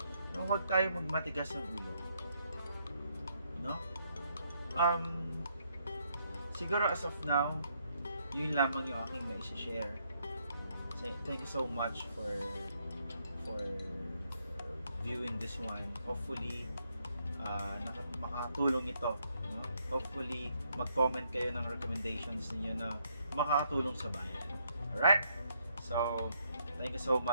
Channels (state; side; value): inverted; both; correlation -0.74